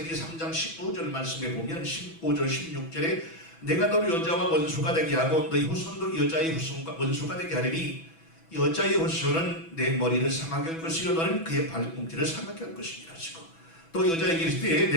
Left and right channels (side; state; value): right; late; 6.1 ms